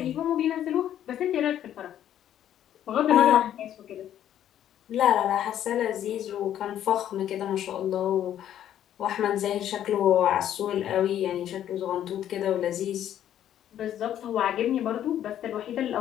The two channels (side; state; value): right; quieter; 10.9 dB